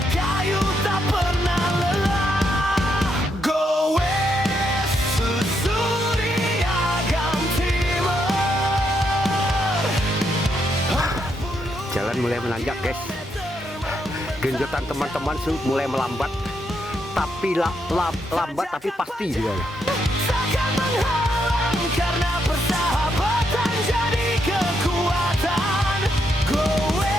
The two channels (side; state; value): both; normal; correlation 0.78